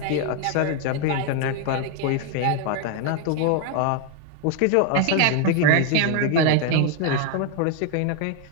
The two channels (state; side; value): different; both; correlation 0.01